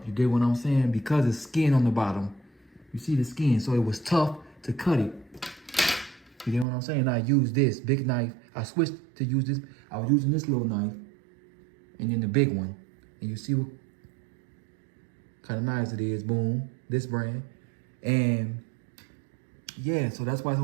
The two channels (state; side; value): drops out; left; at 6.7 s